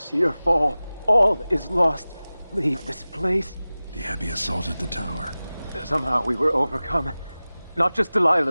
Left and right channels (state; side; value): inverted; both; correlation -0.98